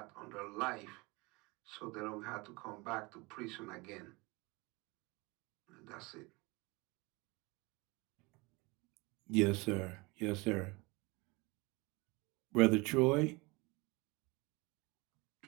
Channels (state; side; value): quieter; left; 25.5 dB